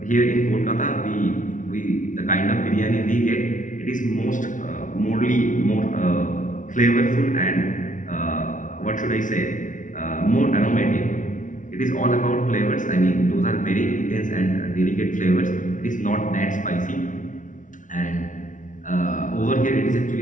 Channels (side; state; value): right; late; 0.37 ms